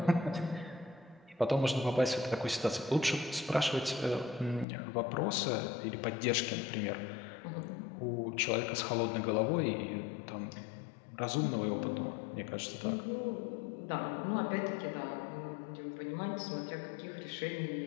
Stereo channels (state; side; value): drops out; right; at 4.7 s